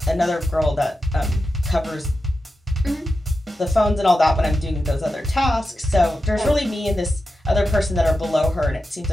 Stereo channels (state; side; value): normal; both; correlation 0.91